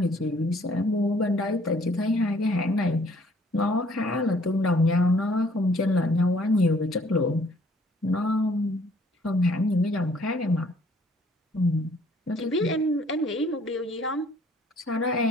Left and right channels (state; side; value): normal; both; correlation 0.60